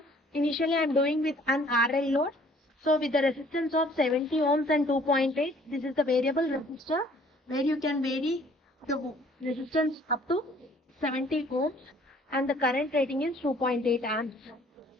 initially I am doing with an RL load. So with the resistance of 70 ohms and 2.8, this is the variable resistor where you can vary the resistance up to 70 ohms, and the current rating is 2.8 amps.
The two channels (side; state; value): both; normal; correlation 0.57